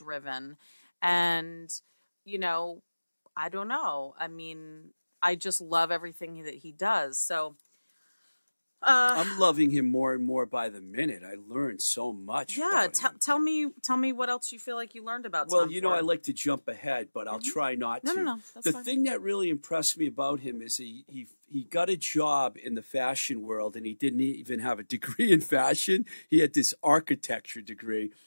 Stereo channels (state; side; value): inverted; both; correlation -1.00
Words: And, you know, I don't know. I mean, I just love everything that he does. So I'm loving him more and more by the minute. I learned so much. Yeah, tell me what else you feel like you learned about Tom Well, you know, I like to jump ahead, but I'll try not to. No, that's the fine. thing that really impressed me about him is he got a job in the fashion world, and he didn't even have a degree in fashion. He had this architecture degree,